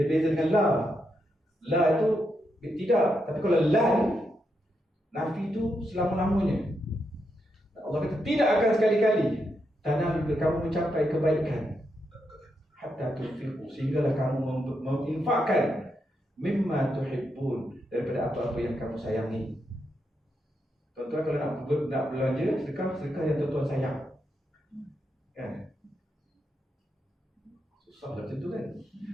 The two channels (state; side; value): normal; both; correlation 0.83